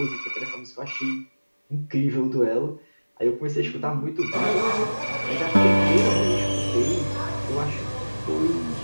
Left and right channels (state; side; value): inverted; both; correlation -1.00